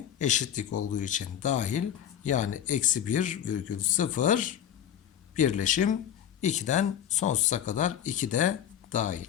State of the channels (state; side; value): quieter; right; 9.9 dB